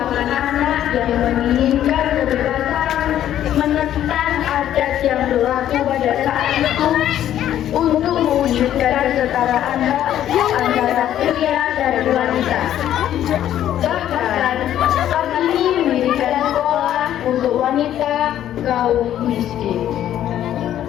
anak yang menginginkan kebebasan, menentang adat yang berlaku pada saat itu untuk mewujudkan kesetaraan hak antara pria dan wanita. Bahkan, Kartini mendirikan sekolah untuk wanita kaum miskin.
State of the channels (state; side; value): quieter; right; 11.4 dB